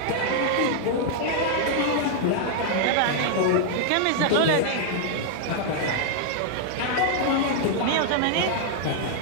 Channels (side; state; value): both; different; correlation 0.00